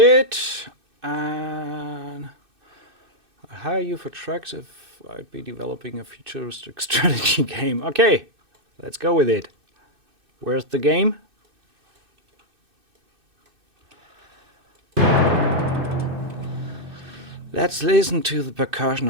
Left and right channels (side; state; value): left; late; 2.6 ms